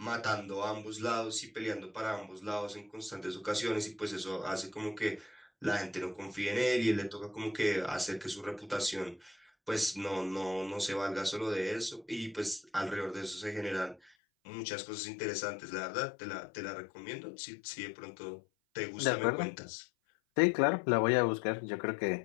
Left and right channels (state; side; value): drops out; right; at 14.1 s